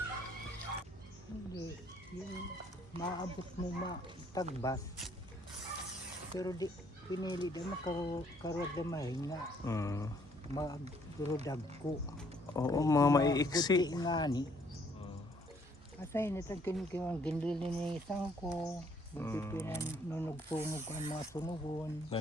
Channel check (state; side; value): normal; both; correlation 0.65